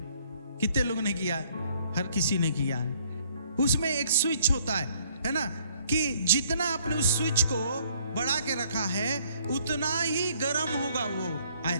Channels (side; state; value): both; inverted; correlation -0.62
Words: कितने लोगों ने किया है? हर किसी ने किया है। उसमें एक स्विच होता है ना, कि जितना आपने उस स्विच को बढ़ा के रखा है उतना ही गर्म होगा वो